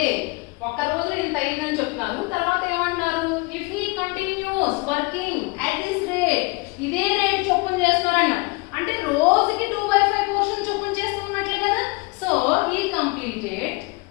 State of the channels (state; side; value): quieter; right; 27.5 dB